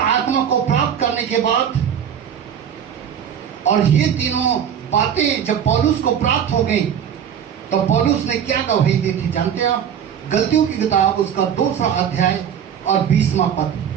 को प्राप्त करने के बाद, और ये तीनों बातें जब पौलुस को प्राप्त हो गई तो पौलुस ने क्या गवाही दी थी जानते हैं आप? गलतियों की किताब उसका 2 अध्याय और 20वां पद।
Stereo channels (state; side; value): quieter; left; 8.6 dB